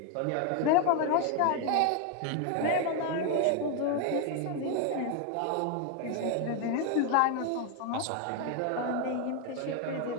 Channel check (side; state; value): both; different; correlation 0.01